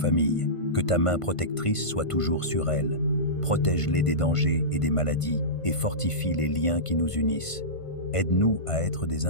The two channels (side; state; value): right; late; 1.5 ms